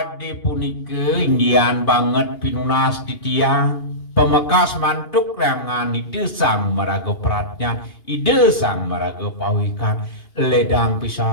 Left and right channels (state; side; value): late; right; 2.8 ms